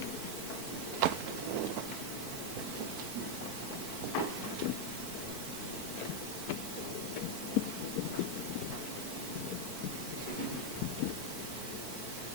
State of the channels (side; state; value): right; late; 4.5 ms